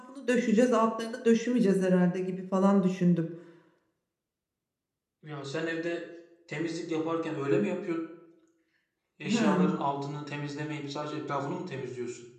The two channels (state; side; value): identical; both; correlation 1.00